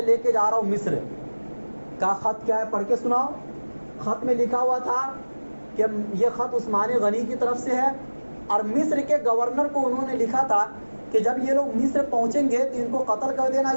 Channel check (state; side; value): inverted; both; correlation -1.00